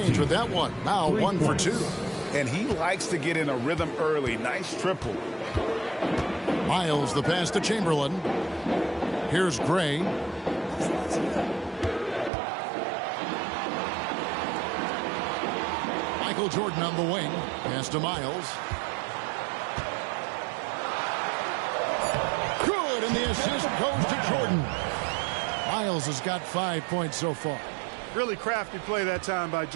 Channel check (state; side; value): drops out; left; at 12.3 s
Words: with that one. Now 1 for 2. And he likes to get in a rhythm early. Nice triple. Miles the pass to Chamberlain. Here's Gray. Michael Jordan on the wing. Pass to Miles. Good, and the assist goes to Jordan. Miles has got 5 points so far. Really crafty play that time by